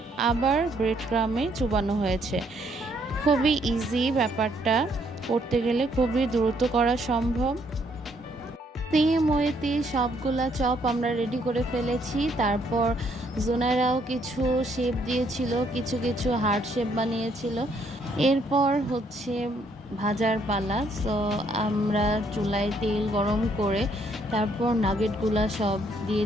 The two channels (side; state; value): both; normal; correlation 0.69